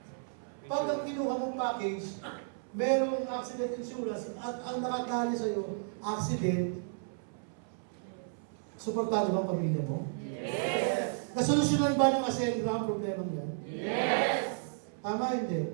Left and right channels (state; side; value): silent; left; 56 dB below the other